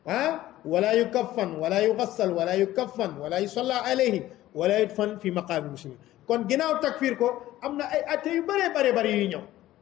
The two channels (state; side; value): quieter; right; 14.9 dB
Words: wala yukaffan wala yugassal wala yukaffan wala yusalla alayhi wala yudfan fi maqaami muslimin kon ginnaaw takfir ko am na ay atte yu bare yuy ñëw